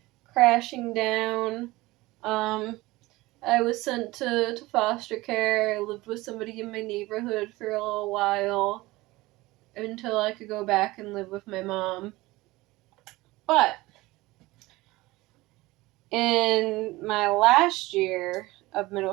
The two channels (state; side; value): quieter; left; 20.0 dB